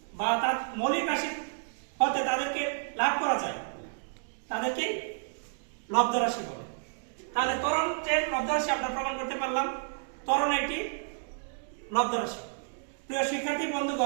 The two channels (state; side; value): silent; left; digital silence